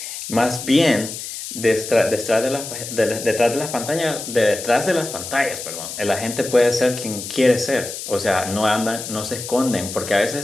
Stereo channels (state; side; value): noise; left; hiss, 8 dB below the sound